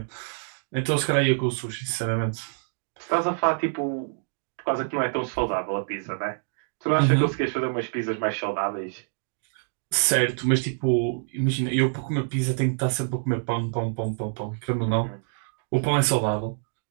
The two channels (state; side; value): silent; left; digital silence